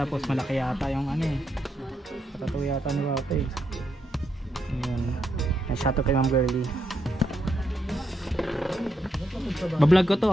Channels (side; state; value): both; normal; correlation 0.80